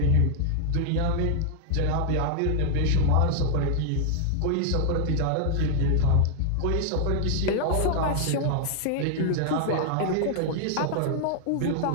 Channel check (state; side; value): different; both; correlation 0.00